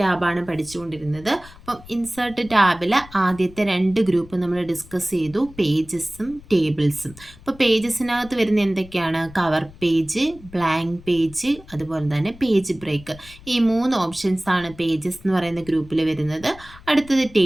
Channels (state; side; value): noise; left; rumble, 20 dB below the sound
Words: പഠിച്ചുകൊണ്ടിരുന്നത്. അപ്പം ഇൻസേർട്ട് ടാബിൽ ആദ്യത്തെ രണ്ട് ഗ്രൂപ്പ് നമ്മൾ ഡിസ്കസ് ചെയ്തു, പേജസും ടേബിൾസും. അപ്പോൾ പേജസിനകത്ത് വരുന്ന എന്തൊക്കെയാണ്? കവർ പേജ്, ബ്ലാങ്ക് പേജ്, അതുപോലെ തന്നെ പേജ് ബ്രേക്ക്. ഈ മൂന്ന് ഓപ്ഷൻസ് ആണ് പേജസ് എന്ന് പറയുന്ന ഗ്രൂപ്പിൽ വരുന്നത്. അടുത്തത്